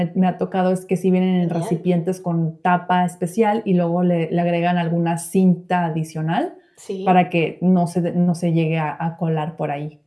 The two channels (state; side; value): identical; both; correlation 1.00